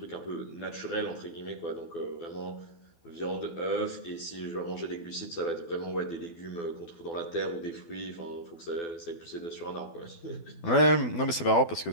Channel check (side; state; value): right; late; 12 ms